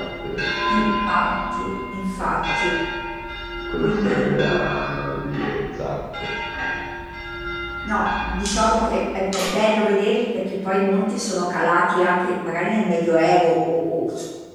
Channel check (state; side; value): identical; both; correlation 1.00